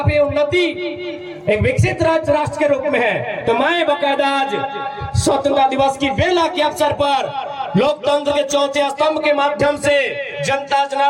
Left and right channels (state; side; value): identical; both; correlation 1.00